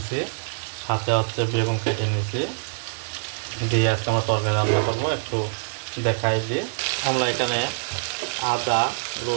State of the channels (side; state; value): left; silent; digital silence